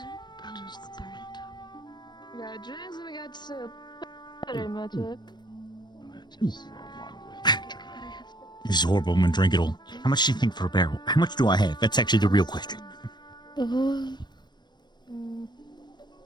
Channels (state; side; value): late; right; 0.21 ms